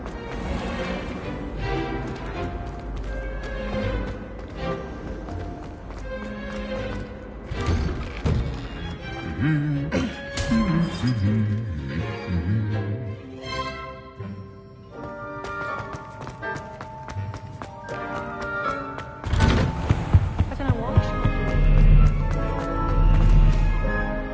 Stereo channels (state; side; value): identical; both; correlation 1.00